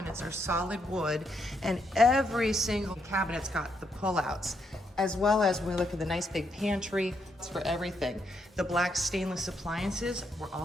are solid wood, and every single cabinet's got the pullouts, as well as when we look at the nice big pantry, it's for everything. The black stainless appliances were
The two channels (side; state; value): both; normal; correlation 0.77